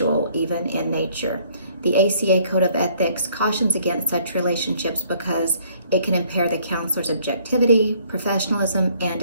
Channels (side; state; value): both; inverted; correlation -0.62